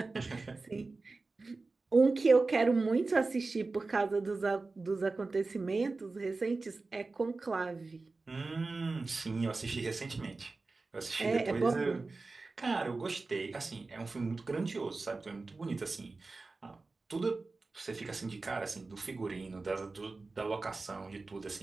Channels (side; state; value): left; quieter; 3.7 dB